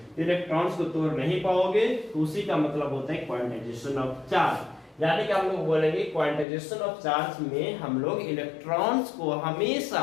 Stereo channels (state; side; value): drops out; right; at 6.5 s